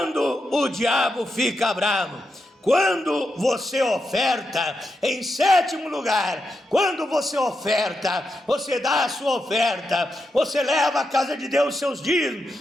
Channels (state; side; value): normal; both; correlation 0.86